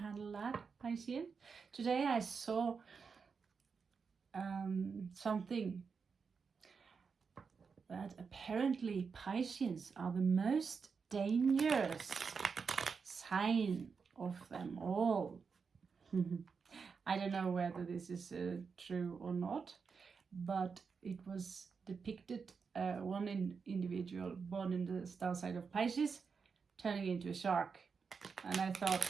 that, Pisces. Today I saw something that apparently Pisces are the most dangerous sign of them all. I don't know whether this is true or not, but it was depicted one individual born in the star sign of Pisces turning into a shark. And I thought,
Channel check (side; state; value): left; quieter; 5.5 dB